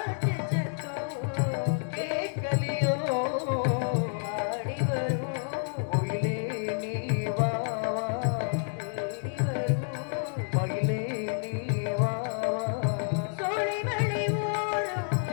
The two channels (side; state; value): right; silent; 58 dB below the other